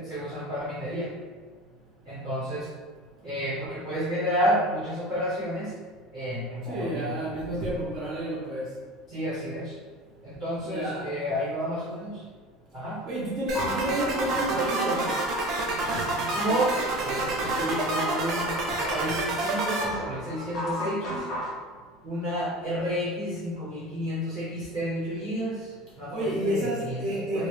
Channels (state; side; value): normal; both; correlation 0.37